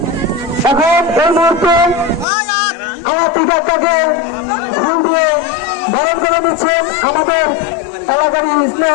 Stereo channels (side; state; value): right; drops out; at 2.2 s